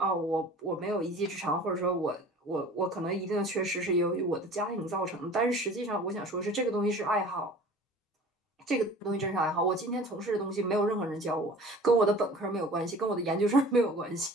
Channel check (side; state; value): both; normal; correlation 0.44